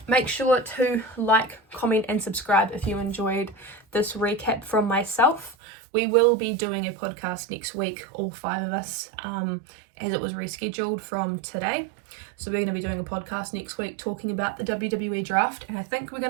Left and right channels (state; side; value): drops out; left; at 5.6 s